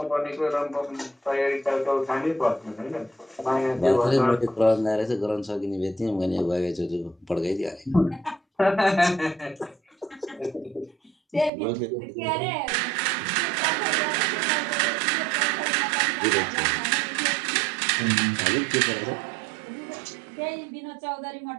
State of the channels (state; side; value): drops out; left; at 11.5 s